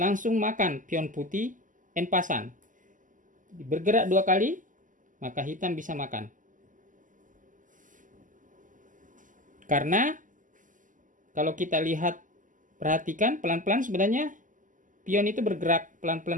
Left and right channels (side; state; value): left; late; 0.38 ms